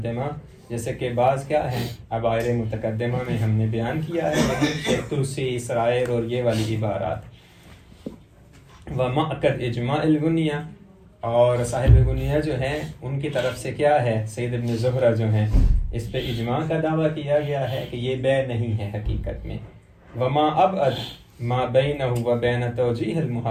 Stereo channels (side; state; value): both; identical; correlation 1.00